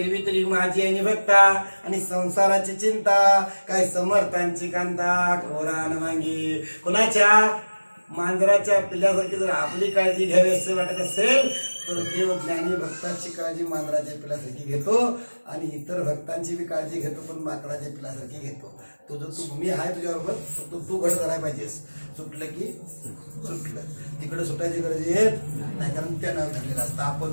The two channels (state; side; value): inverted; both; correlation -1.00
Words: तरी माझी आणि भक्ता आणि संसाराची चिंता, काय समर्थांची कांता कोरान मांगी. कोणाच्या? मांजराच्या पिल्ल्यासारखी जर आपली काळजी घ्यावी असं वाटत असेल तर देव ज्ञानी भक्तांची काळजी मांजराच्या पिल्ल्यासारखी घेतो आणि इतर भक्तांची बी काळजी घेतो, पण माकडाच्या पिल्ल्यासारखी घेतो. तुझं तू मी आहे तुझ्याबरोबर, फक्त तू घट करायला पाहिजेस. सुटलं की सुटलं, तिकडे सुटायची गरज येत नाही, कारण त्यानं धरलेलं असतं.